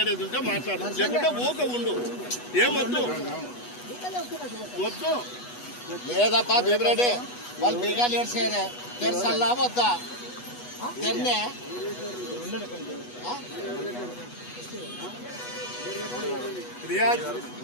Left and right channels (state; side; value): late; right; 8.2 ms